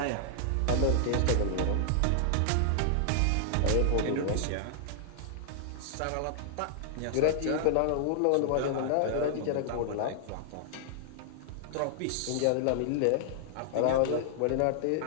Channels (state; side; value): different; both; correlation -0.01